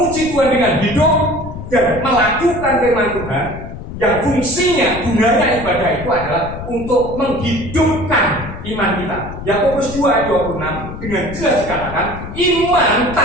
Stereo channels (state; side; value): noise; left; rumble, 10 dB below the sound